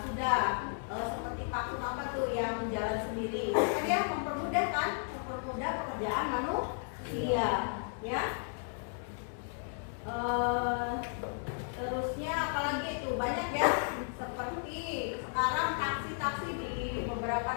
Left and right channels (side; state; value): right; silent; 55 dB below the other